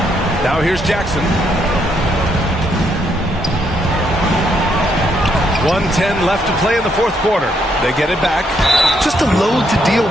Now here's Jackson. 1:10 left to play in the 4th quarter. They get it back. Just a load to deal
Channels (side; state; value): both; normal; correlation 0.74